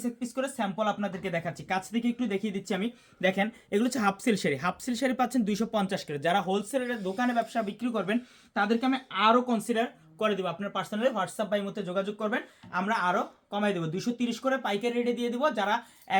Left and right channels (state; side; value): identical; both; correlation 1.00